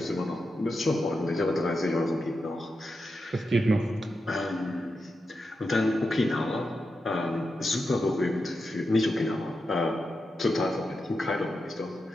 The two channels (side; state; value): both; normal; correlation 0.88